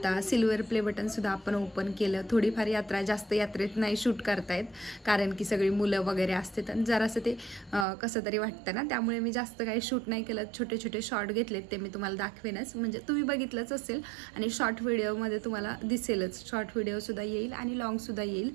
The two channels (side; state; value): left; drops out; at 7.9 s